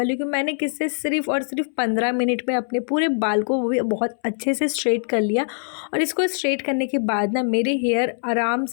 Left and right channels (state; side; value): silent; right; 63 dB below the other